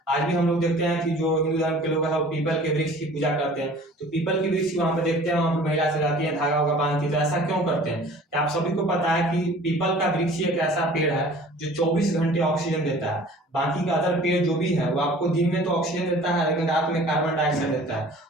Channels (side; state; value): both; normal; correlation 0.47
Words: आज भी हम लोग देखते हैं कि जो हिंदू धर्म के लोग हैं वो पीपल के वृक्ष की पूजा करते हैं। तो पीपल के वृक्ष वहां पर देखते हैं, वहां पर महिला से जाती है, धागा वागा बांधती है। तो ऐसा क्यों करते हैं? कि आप सभी को पता है कि पीपल का वृक्ष एक ऐसा पेड़ है जो 24 घंटे ऑक्सीजन देता है। बाकी का अदर पेड़ जो भी है वो आपको दिन में तो ऑक्सीजन देता है, लेकिन रात में कार्बन डाइऑक्साइड देता है।